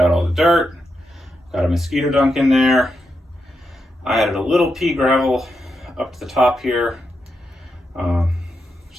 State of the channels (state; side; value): normal; both; correlation 0.85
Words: all the dirt. Got a mosquito dunk in there. I added a little pea gravel up to the top here,